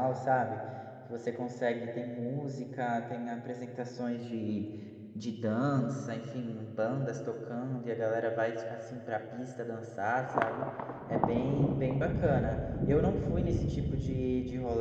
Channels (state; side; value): identical; both; correlation 1.00